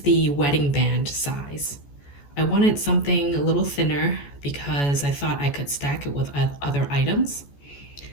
wedding band size. I wanted something a little thinner because I thought I could stack it with other items.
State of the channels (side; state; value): right; late; 14 ms